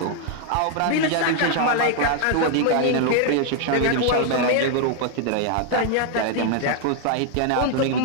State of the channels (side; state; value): both; different; correlation 0.00